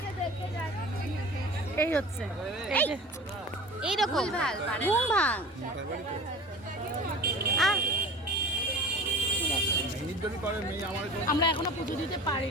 এই হচ্ছে এইরকম ঘুম ভাঙ। আমরা এখনো পুজো দিতে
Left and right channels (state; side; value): normal; both; correlation 0.38